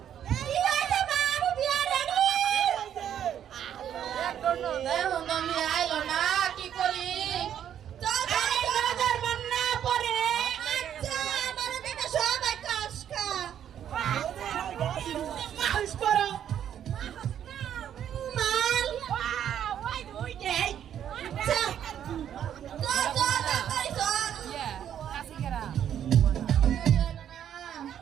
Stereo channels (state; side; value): quieter; left; 9.8 dB